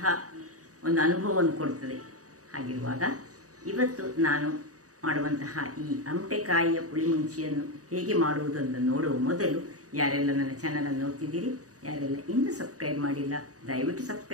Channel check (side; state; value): left; late; 0.66 ms